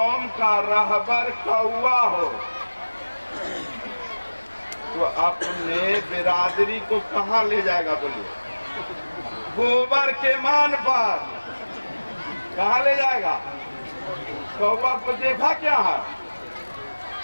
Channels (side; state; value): both; inverted; correlation -1.00